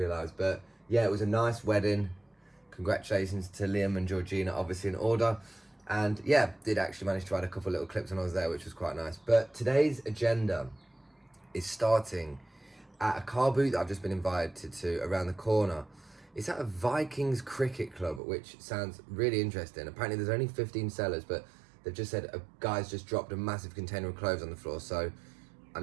but yeah, it was a nice wedding. Congratulations to Liam and Georgina, obviously in order. And yeah, did actually manage to add a couple little clips when I was there, which was quite nice. But today's agenda is starting at a car boot that I've just been invited to around the corner. It's at a Vikings cricket club, which sounds really interesting. Apparently there's only 15 sellers, but they've just said a guy's just dropped a massive container of clothes on the floor. So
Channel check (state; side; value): drops out; left; at 18.2 s